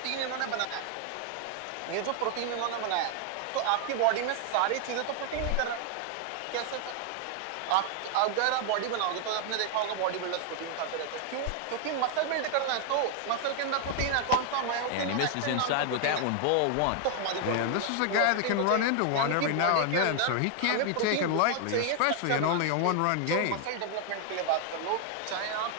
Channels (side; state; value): both; different; correlation 0.00